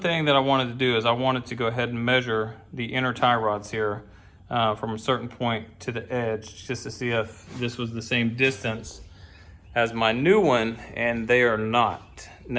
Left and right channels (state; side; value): identical; both; correlation 1.00